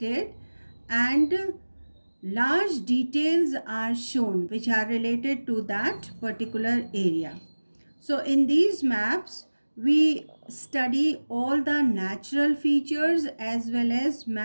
and large details are shown which are related to that particular area. So in these maps, we study all the natural features as well as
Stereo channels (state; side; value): inverted; both; correlation -1.00